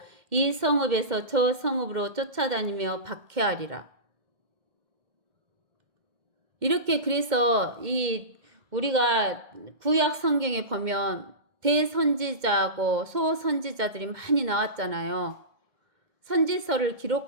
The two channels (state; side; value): late; left; 2.1 ms